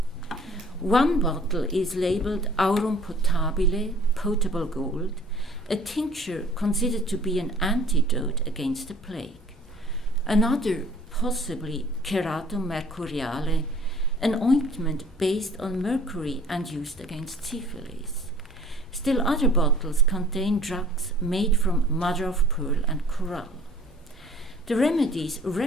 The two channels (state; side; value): normal; both; correlation 0.52